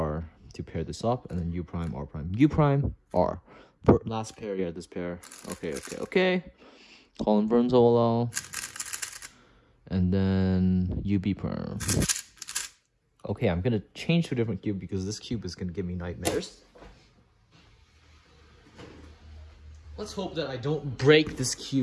to pair this up, and then U prime, R prime, U prime, R. Last pair, yeah, this pair. Okay. Colin Burns OLL. And then UB perm. Okay, I'm gonna change to a different cube because this cube is gonna give me nightmares. Let's hope that I don't break this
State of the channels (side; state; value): both; identical; correlation 1.00